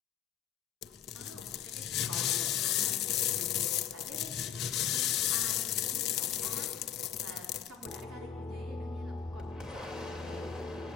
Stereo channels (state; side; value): quieter; right; 9.4 dB